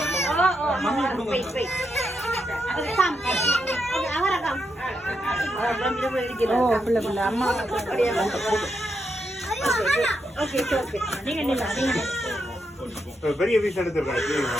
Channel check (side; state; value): both; normal; correlation 0.82